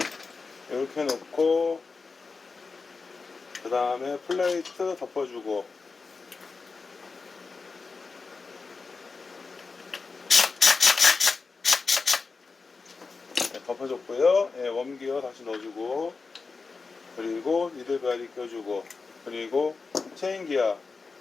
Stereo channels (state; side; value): quieter; right; 4.4 dB